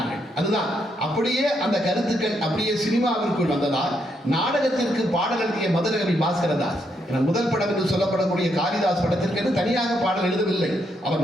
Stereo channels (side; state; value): both; normal; correlation 0.77